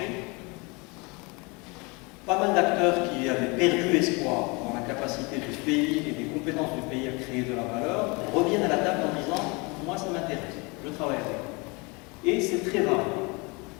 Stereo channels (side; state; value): right; quieter; 28.4 dB